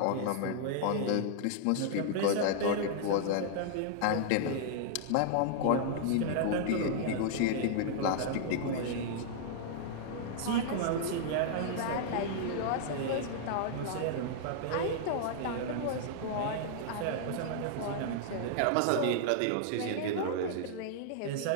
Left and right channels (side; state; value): both; different; correlation -0.01